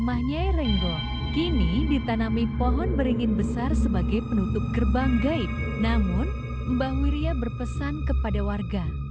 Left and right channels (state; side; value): identical; both; correlation 1.00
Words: Nyai Renggo kini ditanami pohon beringin besar sebagai penutup gerbang gaib. Namun, Mbah Wirya berpesan kepada warga,